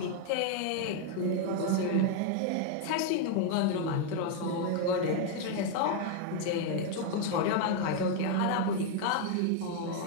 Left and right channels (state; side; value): different; both; correlation 0.00